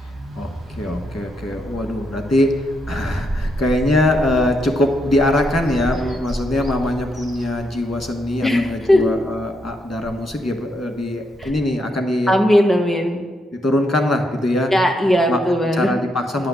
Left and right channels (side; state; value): both; normal; correlation 0.79